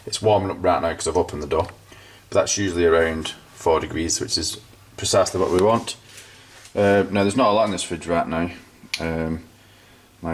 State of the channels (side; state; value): both; identical; correlation 1.00